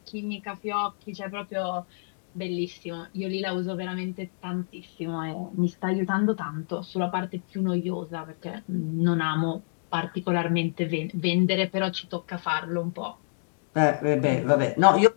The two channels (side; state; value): right; silent; digital silence